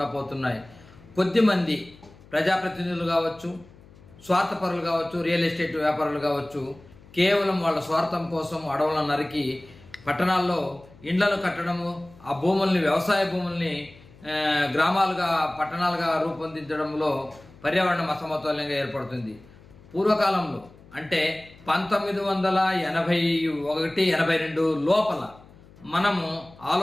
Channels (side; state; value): left; noise; hum, 24 dB below the sound